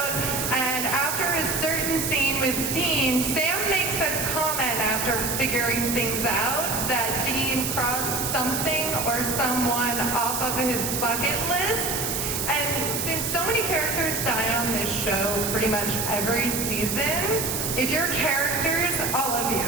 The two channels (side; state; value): right; noise; hiss, 2 dB below the sound